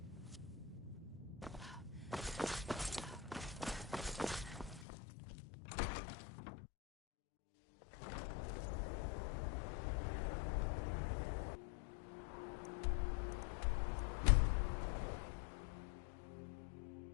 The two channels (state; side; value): drops out; right; at 4.9 s